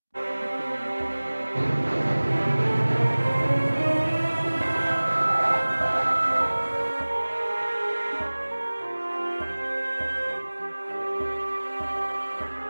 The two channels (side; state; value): both; inverted; correlation -1.00